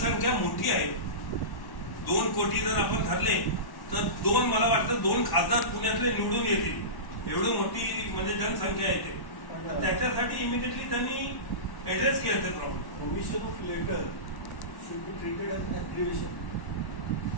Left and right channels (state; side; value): late; right; 1.1 ms